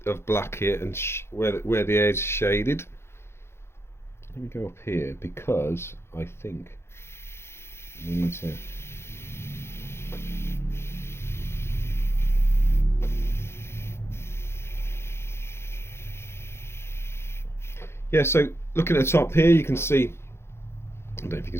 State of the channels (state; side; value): late; right; 0.12 ms